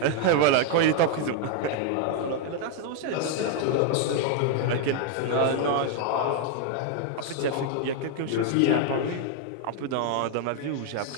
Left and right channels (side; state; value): both; different; correlation 0.00